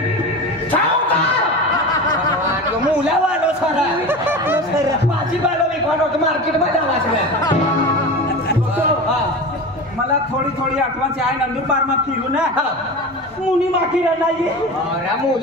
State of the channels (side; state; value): both; normal; correlation 0.29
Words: मुला वालो सर भाजीपालो विकवानो मार्केट मध्ये आला मला थोडी आठवण आहे नंदुरबार में फिरू ना मुनी माखी नाही